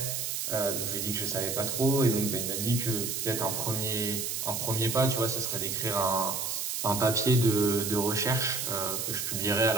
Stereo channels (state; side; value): noise; right; hiss, 2 dB below the sound